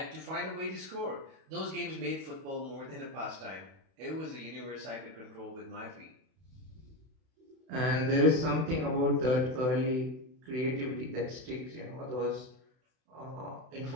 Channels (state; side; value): late; left; 32 ms